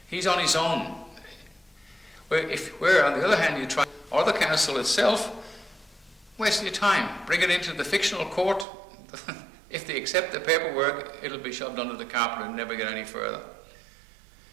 He's on his own. Where on the other hand you try, or the council itself, waste your time. Bring it into the fictional court. If they accept the paperwork, it'll be shoved under the carpet and never get any further.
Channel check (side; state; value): left; drops out; at 8.7 s